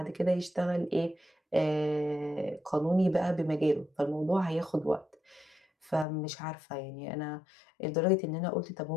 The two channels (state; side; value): drops out; right; at 6.1 s